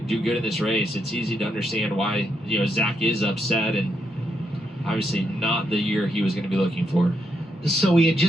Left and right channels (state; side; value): normal; both; correlation 0.80